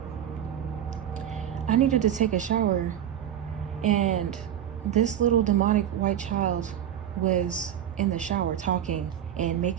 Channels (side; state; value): left; quieter; 10.4 dB